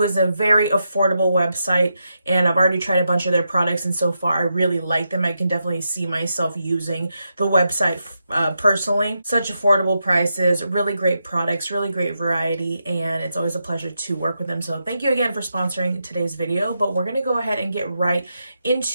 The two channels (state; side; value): inverted; both; correlation -0.85